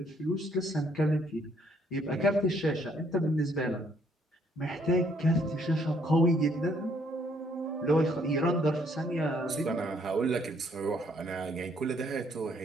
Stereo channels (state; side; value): normal; both; correlation 0.67